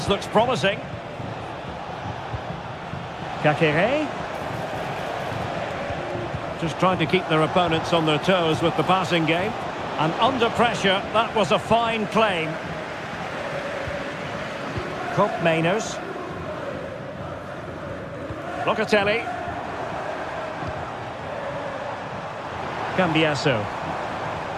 looks promising. Caqueret. Just trying to keep their opponents on their toes with the passing game. And under pressure, that was a fine claim. Cope Mainers. Locatelli. Cambiasso.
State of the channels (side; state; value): both; identical; correlation 1.00